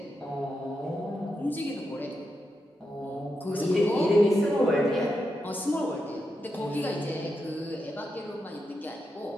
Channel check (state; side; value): normal; both; correlation 0.86